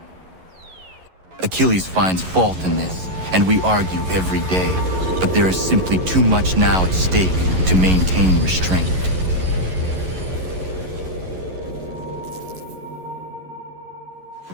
Achilles finds fault in this, and we argue every day, but there is simply too much now at stake to maintain restraint.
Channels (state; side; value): late; left; 11 ms